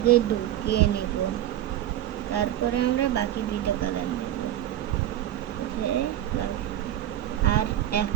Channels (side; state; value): left; quieter; 12.5 dB